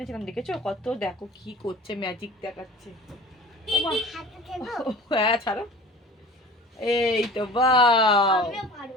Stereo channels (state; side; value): normal; both; correlation 0.41